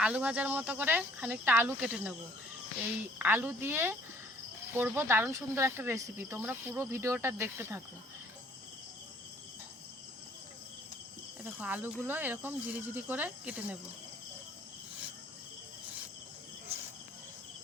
আলু ভাজার মতো করে খানিকটা আলু কেটে নেব। এই আলু দিয়ে করব দারুণ সুন্দর একটা রেসিপি। তোমরা পুরো ভিডিওটা দেখতে থাকো। এ দেখো, আলুগুলো এরকম ঝিরি ঝিরি করে কেটে নেব।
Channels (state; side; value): normal; both; correlation 0.58